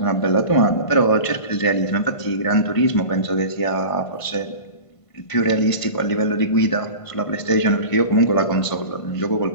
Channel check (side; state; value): right; late; 1.5 ms